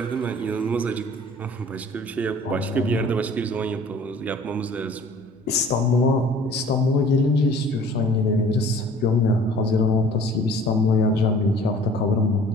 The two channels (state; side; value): normal; both; correlation 0.49